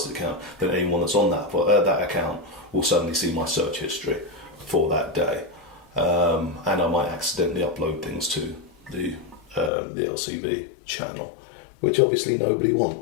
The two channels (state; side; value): drops out; right; at 9.7 s